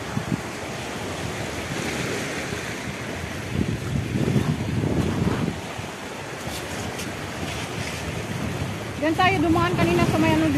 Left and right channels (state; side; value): identical; both; correlation 1.00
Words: Diyan tayo dumaan kanina sa may ano,